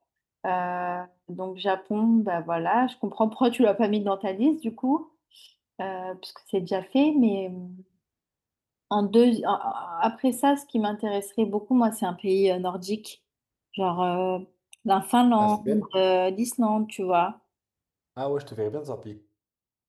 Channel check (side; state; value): both; identical; correlation 1.00